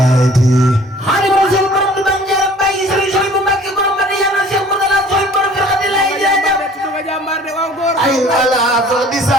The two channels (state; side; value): normal; both; correlation 0.51